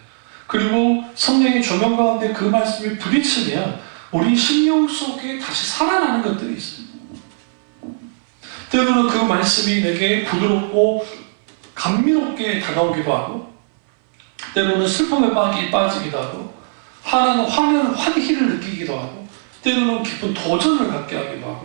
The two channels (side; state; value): left; silent; 61 dB below the other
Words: 그리고 성령의 조명 가운데 그 말씀이 부딪히면 우리 심령 속에 다시 살아나는 것들이 있어요. 때로는 그 말씀이 내게 부드럽고 감미롭게 다가오기도 하고, 때로는 슬픔에 빠지기도 하고, 화는 환희를 느끼기도 하고, 때로는 깊은 도전을 갖게 하기도